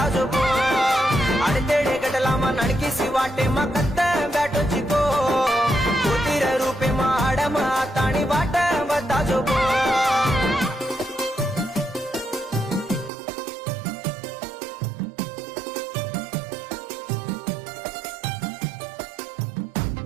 जो अडतेडे गटला मा नणकिसी वाटे मकत्त बॅटो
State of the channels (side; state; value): left; drops out; at 13.1 s